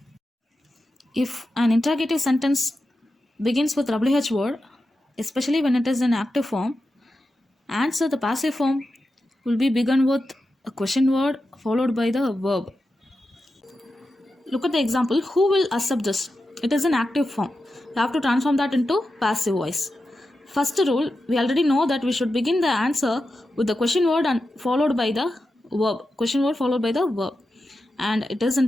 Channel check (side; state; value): both; normal; correlation 0.90